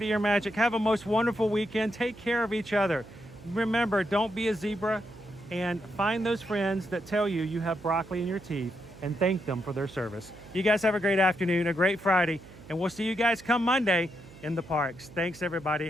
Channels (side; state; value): right; noise; hum, 20 dB below the sound